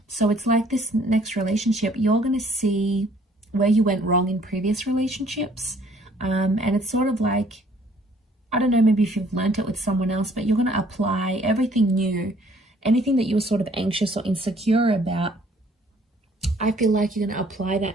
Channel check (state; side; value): normal; both; correlation 0.60